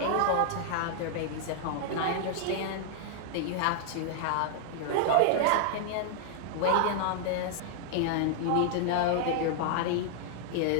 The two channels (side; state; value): both; different; correlation -0.01